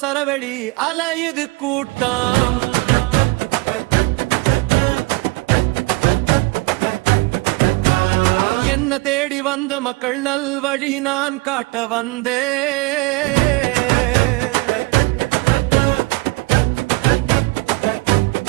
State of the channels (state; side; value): quieter; left; 24.1 dB